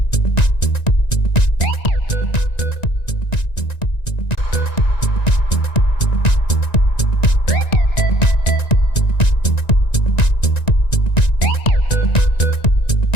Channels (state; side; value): late; right; 1.9 ms